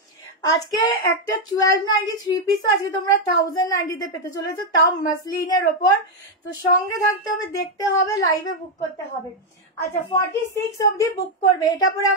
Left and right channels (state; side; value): normal; both; correlation 0.01